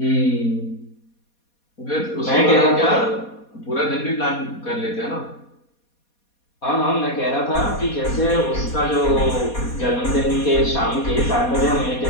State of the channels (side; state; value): right; late; 4.2 ms